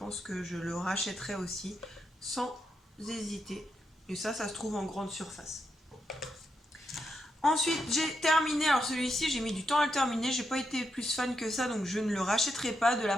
que je le rachèterai aussi sans hésiter. Et ça se trouve en grande surface. Ensuite, j'ai terminé, alors celui-ci, j'ai mis du temps à le terminer, j'ai pas été plus fan que ça, donc je ne le rachèterai pas, de la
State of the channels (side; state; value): both; normal; correlation 0.83